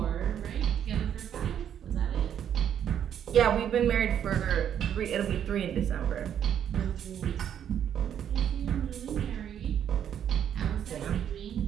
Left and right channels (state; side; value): quieter; left; 9.3 dB